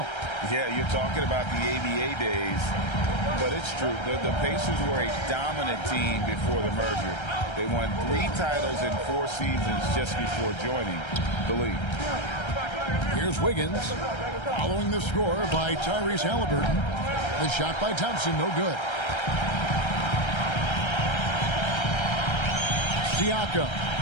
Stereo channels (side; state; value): right; late; 1.3 ms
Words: Yeah, you're talking about the ABA days, but it's true. The Pacers were a dominant team before the merger. They won 3 titles in 4 seasons just before joining the league. Here's Wiggins, following the score by Tyrese Halliburton. The shot by Thompson, no good. Siakam,